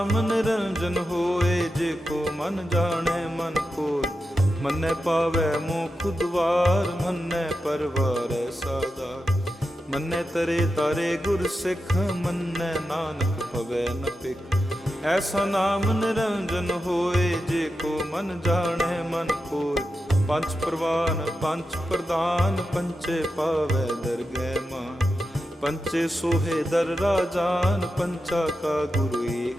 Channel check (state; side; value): normal; both; correlation 0.89